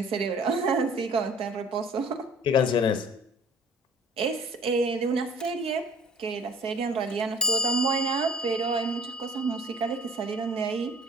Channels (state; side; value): normal; both; correlation 0.50